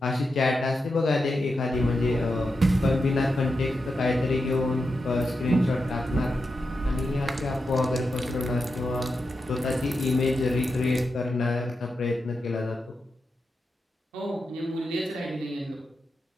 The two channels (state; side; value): normal; both; correlation 0.88